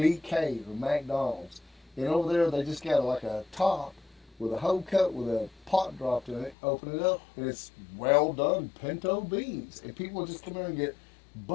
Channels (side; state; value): right; drops out; at 6.6 s